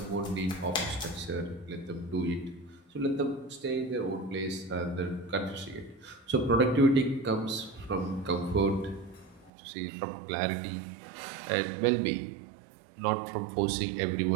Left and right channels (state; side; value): drops out; left; at 9.5 s